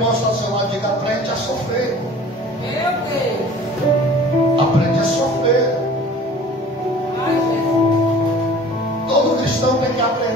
que está ao seu lado e diga: aprende a sofrer. Meu Deus. Aprende a sofrer. Todo cristão tem que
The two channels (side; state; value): both; normal; correlation 0.46